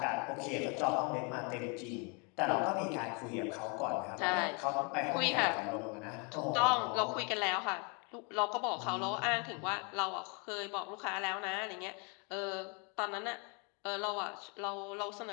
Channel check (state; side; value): quieter; right; 33.7 dB